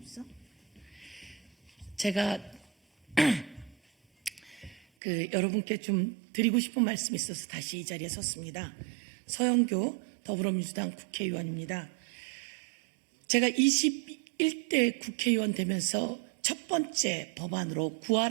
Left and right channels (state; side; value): drops out; left; at 4.8 s